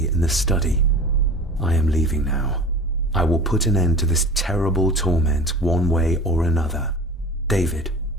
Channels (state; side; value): normal; both; correlation 0.37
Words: in the study. I am leaving now. I will put an end to this terrible torment one way or another. David,